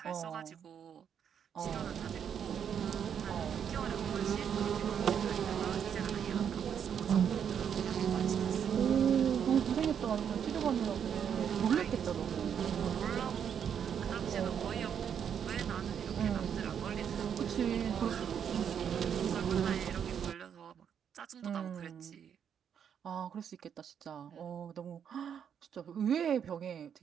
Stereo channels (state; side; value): quieter; left; 8.2 dB